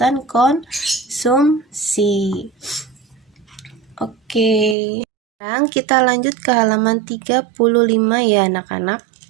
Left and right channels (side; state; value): left; drops out; at 4.8 s